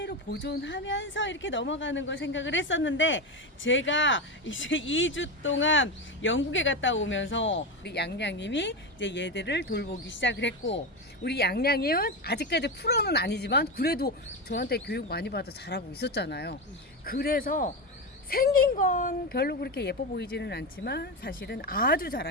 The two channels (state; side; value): normal; both; correlation 0.16